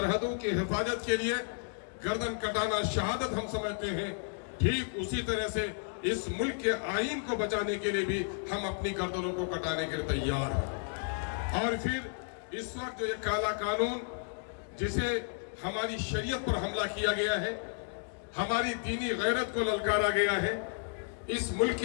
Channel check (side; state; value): right; silent; 56 dB below the other